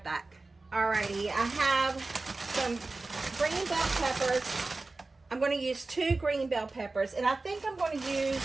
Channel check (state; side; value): quieter; left; 3.4 dB